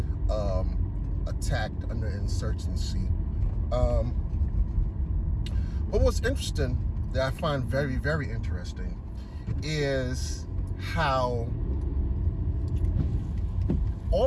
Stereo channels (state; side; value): identical; both; correlation 1.00